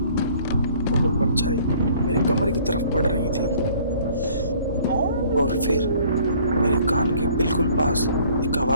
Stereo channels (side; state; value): both; inverted; correlation -0.56